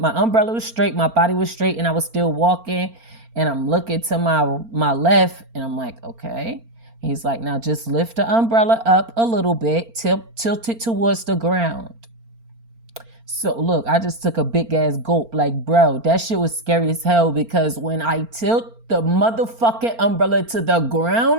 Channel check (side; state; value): left; late; 4.4 ms